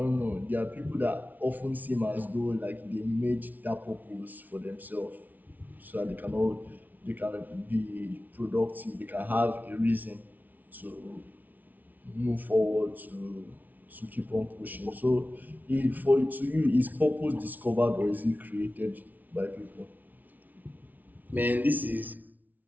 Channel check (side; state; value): left; late; 0.079 ms